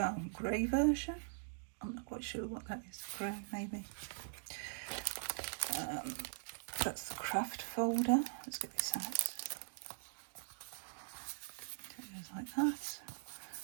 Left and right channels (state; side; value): silent; left; digital silence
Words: grey version. I'm not quite sure what that is. Grey, maybe. That's the craft folder. Let's get this out. It goes like that.